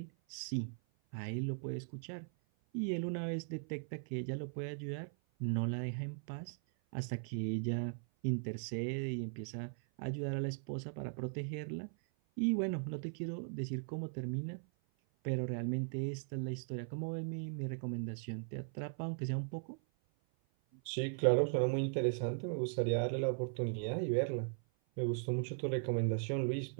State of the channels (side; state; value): left; silent; 52 dB below the other